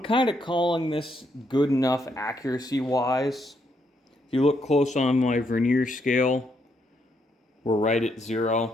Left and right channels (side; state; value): both; normal; correlation 0.76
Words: of calling this good enough accuracy wise. If you look close on my vernier scale, we're right at